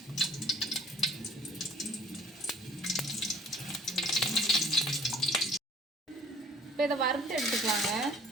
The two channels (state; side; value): normal; both; correlation 0.54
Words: இப்போ இதை வறுத்து எடுத்துக்கலாங்க.